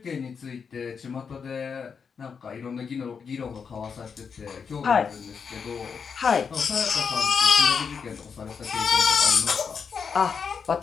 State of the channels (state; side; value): quieter; right; 6.1 dB